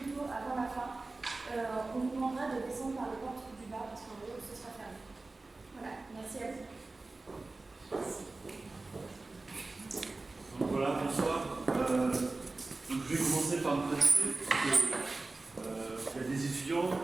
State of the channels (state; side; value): quieter; left; 3.4 dB